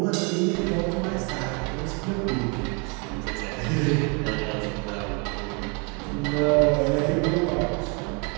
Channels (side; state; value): left; quieter; 33.5 dB